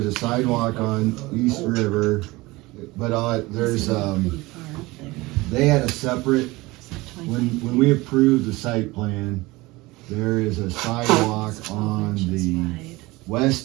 a sidewalk on East River, but there's, Pretty far up there. they had a separate, It's like 25 when we approved the site plan, there is a sidewalk It's 12 on inches the wide.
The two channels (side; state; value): left; quieter; 21.3 dB